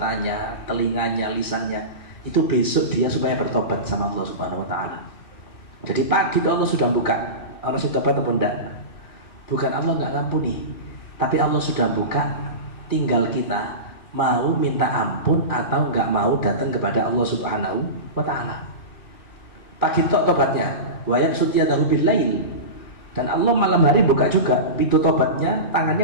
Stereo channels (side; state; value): right; late; 2.6 ms